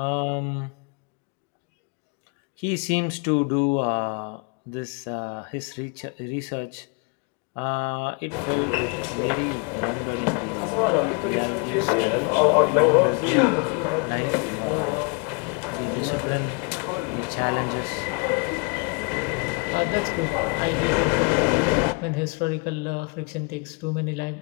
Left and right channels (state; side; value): quieter; right; 32.6 dB